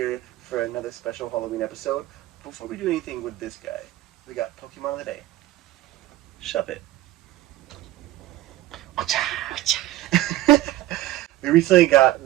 for another special Halloween episode. Before we do anything with this guy, we got Pokemon of the Day. Shove it. We recently got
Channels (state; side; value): quieter; left; 15.3 dB